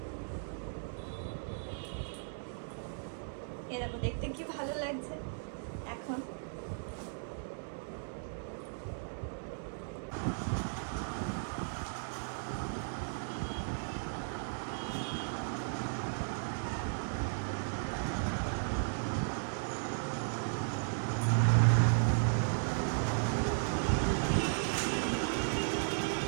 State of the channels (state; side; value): silent; left; digital silence